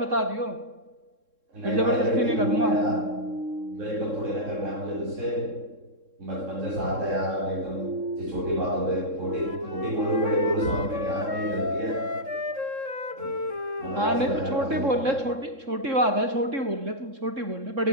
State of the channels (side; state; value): left; late; 3.7 ms